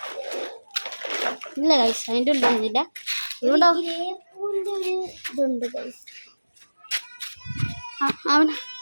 ഇല്ല ഗൈസ്, അതിൻ്റെ ഉള്ളില്ല. ഇവിടെ ഇതുണ്ട് ഗൈസ്. അവിടെ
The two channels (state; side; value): inverted; both; correlation -1.00